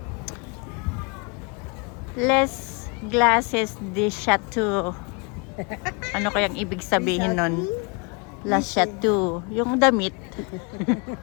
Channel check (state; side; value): quieter; right; 31.8 dB